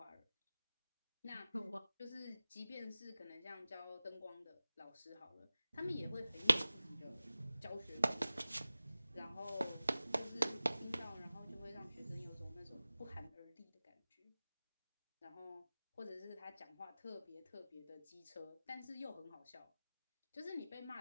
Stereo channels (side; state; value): both; inverted; correlation -0.97